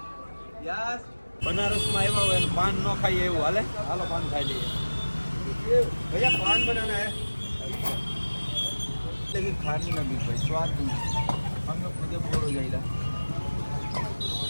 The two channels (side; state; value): both; inverted; correlation -1.00